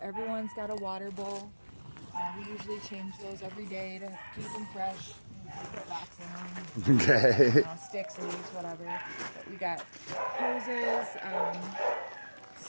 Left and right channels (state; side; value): inverted; both; correlation -1.00